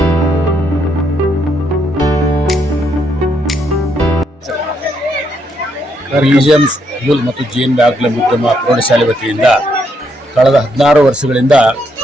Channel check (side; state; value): both; normal; correlation 0.75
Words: BGM school ಮತ್ತು GNB ಆಂಗ್ಲ ಮಾಧ್ಯಮ ಪ್ರೌಢಶಾಲೆ ವತಿಯಿಂದ ಕಳೆದ 16 ವರ್ಷಗಳಿಂದ